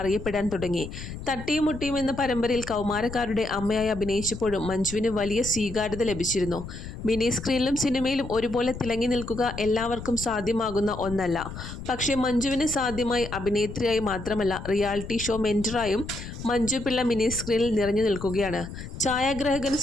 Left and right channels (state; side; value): noise; left; rumble, 10 dB below the sound